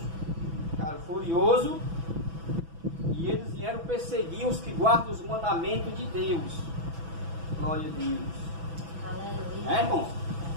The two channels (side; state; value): left; late; 6.1 ms